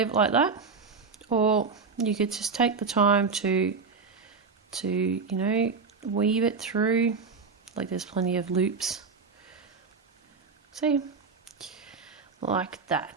it like that, or you could just take the time to you know, weave it through, like there's plenty of loops. See? Like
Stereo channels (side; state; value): left; quieter; 4.8 dB